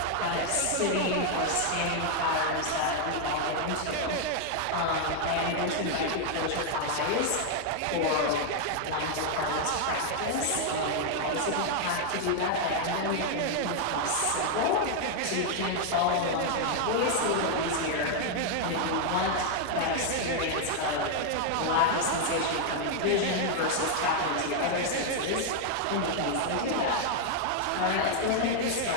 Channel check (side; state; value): both; different; correlation 0.00